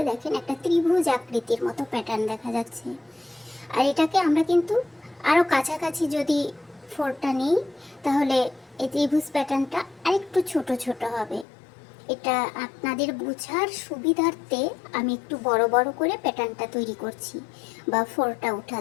দেখেন একটা ত্রিভুজ আকৃতির মতো প্যাটার্ন দেখা যাচ্ছে। আর এটাকে আমরা কিন্তু আরও কাছাকাছি যদি ফোরটা নিই তাহলে এই ত্রিভুজ প্যাটার্নটা আরেকটু ছোট ছোট হবে। এটা আপনাদের বোঝার সুবিধার্থে আমি একটু বড় বড় করে প্যাটার্নটা তৈরি করছি বা ফোরটা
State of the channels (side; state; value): right; drops out; at 11.5 s